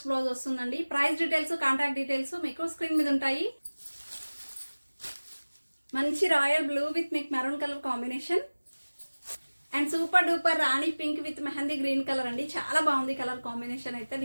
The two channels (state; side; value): inverted; both; correlation -1.00